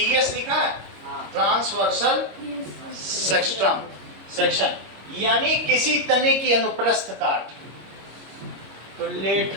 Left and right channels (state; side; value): late; left; 26 ms